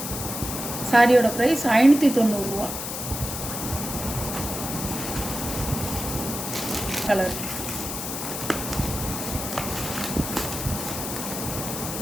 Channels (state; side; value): noise; left; hiss, 5 dB below the sound